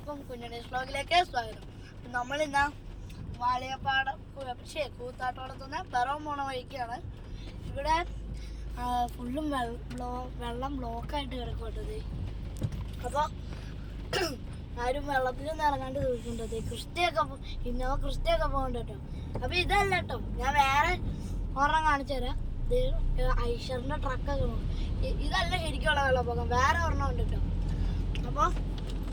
കുഞ്ഞുണ്ണീസ് വ്ലോഗിലേക്ക് സ്വാഗതം. നമ്മളിന്ന് വാളിയപ്പാടം കൂത്താട്ടോളത്തുനിന്ന് പിറവം പോണ വഴിക്കാണ്. ഇവിടെ ഫുള്ളും വെള്ളം ബ്ലോക്കായിട്ട് കിടക്കട്ടത്. അപ്പോൾ ആരും വെള്ളത്തിലൊന്നും ഇറങ്ങാണ്ട് ചോദിക്കേണ്ടത്. ഇന്നോവ ക്രിസ്റ്റയൊക്കെ പോകണ്ട കേട്ടോ. അപ്പോൾ ഇതല്ല കേട്ടോ, ഞാൻ വേറെ ഒരെണ്ണം കാണിച്ചു തരാം. ഐഷറിൻ്റെ ട്രക്കൊക്കെ പോകും. ഇതല്ല ശരിക്കുള്ള വെള്ളപ്പൊക്കം, വേറെ ഒരെണ്ണം ഉണ്ട് കേട്ടോ. അപ്പോൾ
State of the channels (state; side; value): identical; both; correlation 1.00